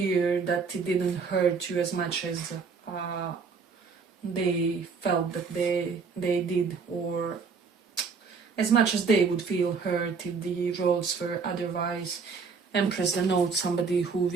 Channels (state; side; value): quieter; left; 5.2 dB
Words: that it didn't hurt you as much as they felt that they did, or as much as they would feel hurt if the roles were otherwise. Empress denotes somebody who